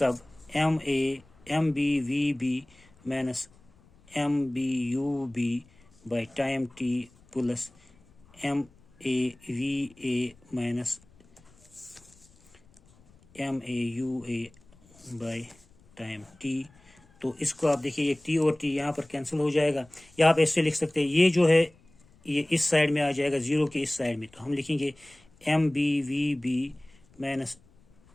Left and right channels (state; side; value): noise; left; rumble, 29 dB below the sound